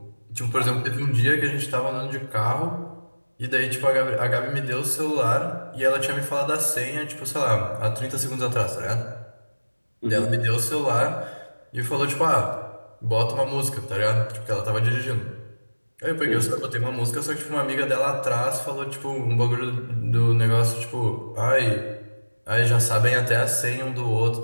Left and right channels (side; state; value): both; inverted; correlation -1.00